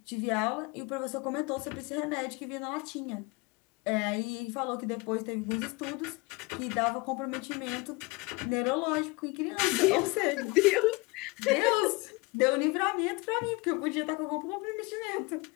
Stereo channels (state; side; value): quieter; right; 25.0 dB